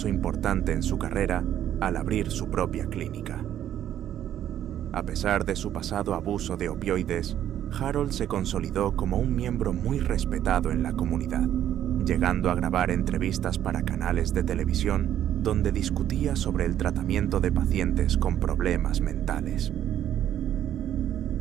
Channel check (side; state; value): left; quieter; 11.0 dB